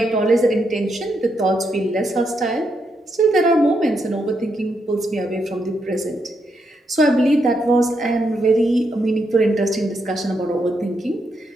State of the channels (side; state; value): both; normal; correlation 0.80